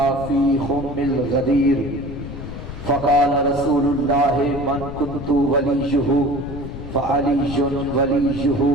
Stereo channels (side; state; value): left; noise; rumble, 10 dB below the sound